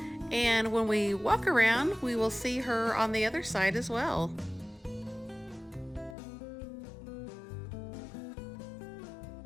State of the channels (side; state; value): right; drops out; at 6.2 s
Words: and when we walk around, we will see her on the other side as well.